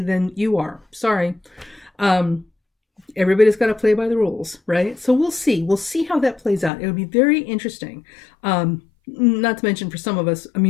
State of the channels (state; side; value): drops out; right; at 6.7 s